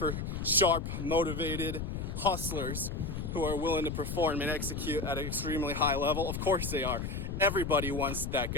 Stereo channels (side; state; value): left; noise; rumble, 4 dB below the sound